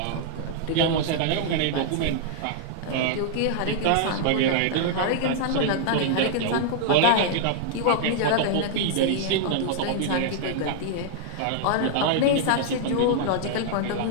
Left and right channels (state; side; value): different; both; correlation -0.01